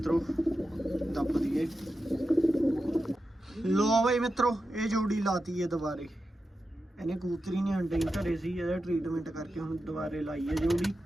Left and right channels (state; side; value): normal; both; correlation 0.90